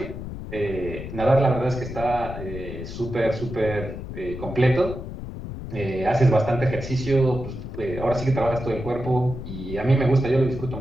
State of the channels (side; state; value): left; noise; rumble, 9 dB below the sound